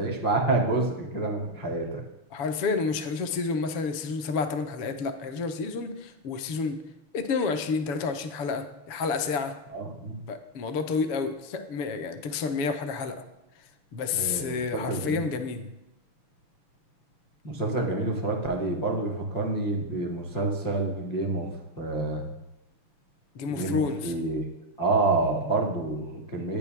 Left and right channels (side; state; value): right; late; 7.0 ms